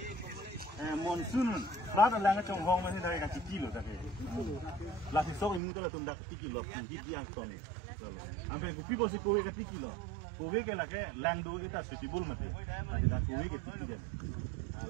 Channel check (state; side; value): drops out; left; at 5.6 s